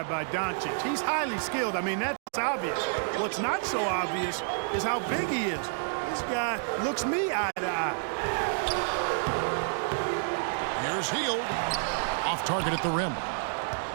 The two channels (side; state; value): left; silent; digital silence